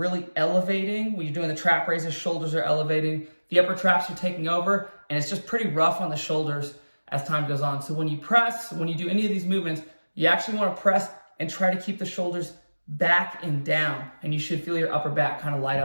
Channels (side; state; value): both; inverted; correlation -1.00